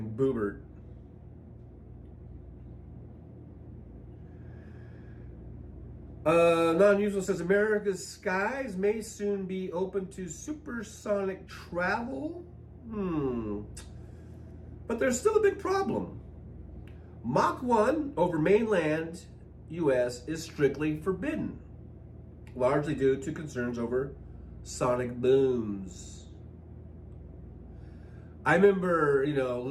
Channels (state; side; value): identical; both; correlation 1.00